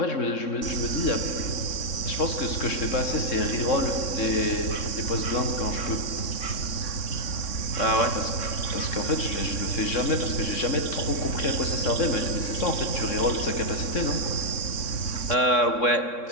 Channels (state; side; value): late; right; 3.6 ms